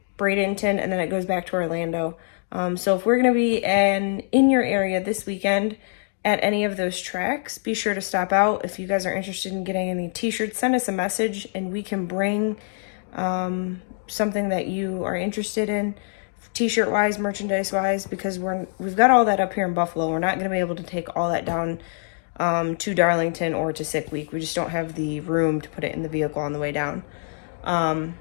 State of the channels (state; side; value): silent; right; 62 dB below the other